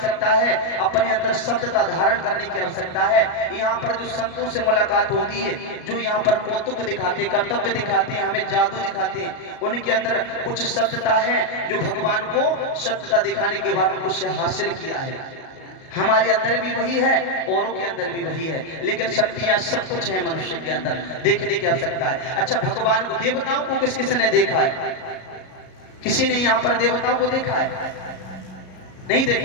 है, अपने अंदर सत्यता धारण करने की आवश्यकता है। यहाँ पर जो संतों से मुलाकात होती है, जो यहाँ पर कौतुक दिखाते, कर्तव्य दिखाते हैं, हमें जादू दिखाते हैं, उनके अंदर कुछ सत्यता है जो भगवान को सत्यता दिखाने के बाद कुछ हासिल किया है। हमारे अंदर भी वही है, औरों के अंदर भी वही है, लेकिन शक्तियां सब कुछ है मनुष्य के अंदर, देखने की आवश्यकता है। अच्छा भगवान को, देवताओं को किस किस ने देखा है? किसी ने यहाँ पर देवताओं को देखा है? नहीं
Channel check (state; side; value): late; right; 38 ms